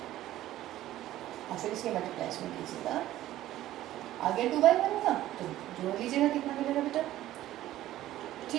और फिर इसकी मल्टीप्लाई में कीजिएगा आगे 2/1 का, तो जोड़ लीजिएगा कितना मिलेगा बेटा।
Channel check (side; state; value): left; quieter; 14.2 dB